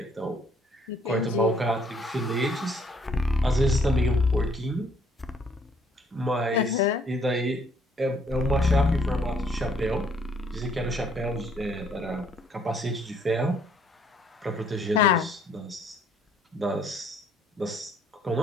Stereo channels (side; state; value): both; normal; correlation 0.64